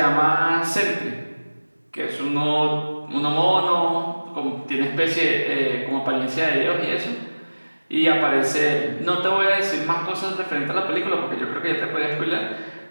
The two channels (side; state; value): both; inverted; correlation -1.00